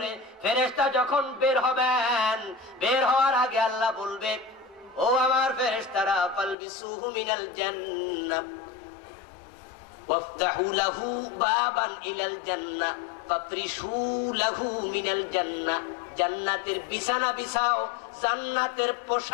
ফেরেশতা যখন বের হবেন, বের হওয়ার আগে আল্লাহ বলবে, ও আমার ফেরেশতারা, ফালবিসুহু মিনাল জান্নাহ ওয়াফতাহু লাহু বাবান ইলাল জান্নাহ ফাফরিশু লাহু মিনাল জান্নাহ। জান্নাতের বিছানা বিছাও, জান্নাতের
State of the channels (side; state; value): right; drops out; at 6.6 s